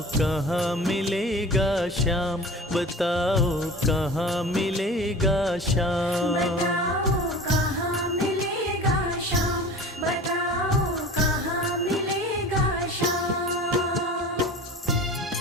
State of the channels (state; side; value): normal; both; correlation 0.38